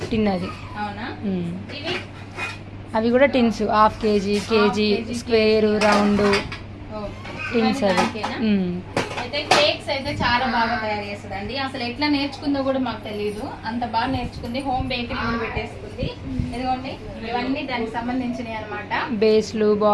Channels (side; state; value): both; identical; correlation 1.00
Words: టిన్ అది. అవునా? ఇవి అవి కూడా tins, half KG, KG, square, round tins అవి. అయితే కేక్స్ అయితే చాలా బాగా తయారు చేస్తుందండి. అసలు ఎట్లా నేర్చుకుందో కూడా మాకు తెలియదు, అంత బాగా నేర్చుకుంది. హోమ్ బేకరీ కూడా పెట్టేసుకుంది. ఇదిగోండి, ఇవన్నీ దానికి సంబంధించినవి అనమాట. బేస్లు,